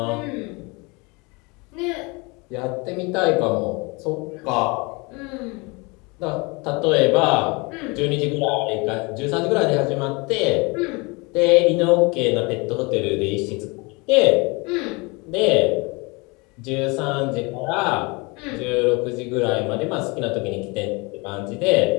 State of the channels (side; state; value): right; quieter; 27.6 dB